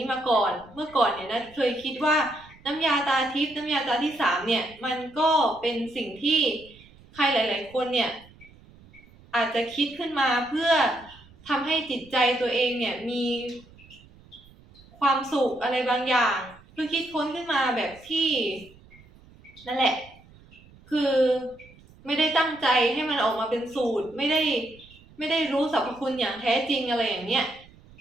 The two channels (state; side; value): noise; right; rumble, 25 dB below the sound